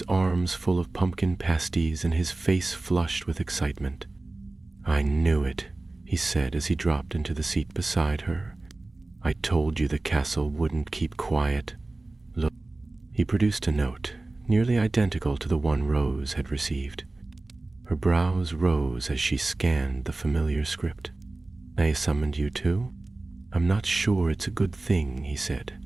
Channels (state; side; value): quieter; left; 3.0 dB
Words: arms full of pumpkin pasties and his face flushed with excitement. I knew it, he said as he dropped into the seat beside her. I told you the castle wouldn't keep quiet. Look. He produced a note, nearly identical to the one Rose had received. Her brows rose as she scanned the familiar script. I summoned you too? I'm not sure it's a good thing, he